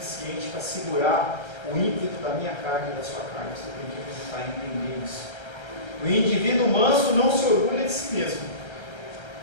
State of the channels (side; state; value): right; late; 1.3 ms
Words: para segurar o ímpeto da minha carne e da sua carne. Você tem que acreditar e entender isso. O indivíduo manso não se orgulha de si mesmo.